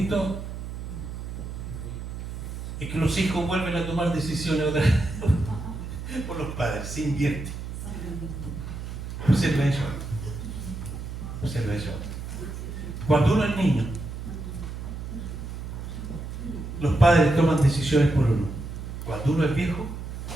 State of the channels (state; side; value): noise; right; hum, 8 dB below the sound